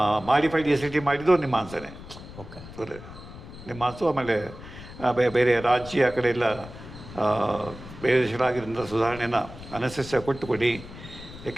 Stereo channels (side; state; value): left; noise; rumble, 15 dB below the sound